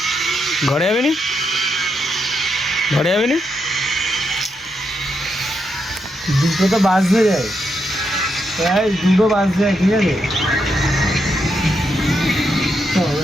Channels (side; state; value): both; normal; correlation 0.82